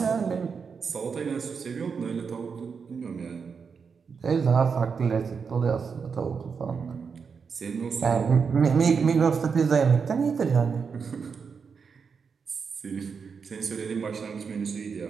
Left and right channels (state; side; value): quieter; left; 5.8 dB